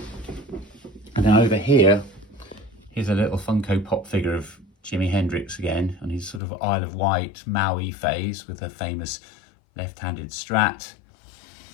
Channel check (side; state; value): right; drops out; at 6.4 s